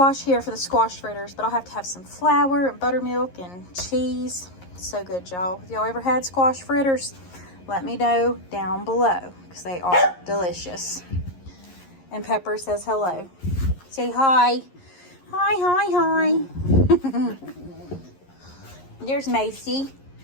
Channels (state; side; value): late; right; 11 ms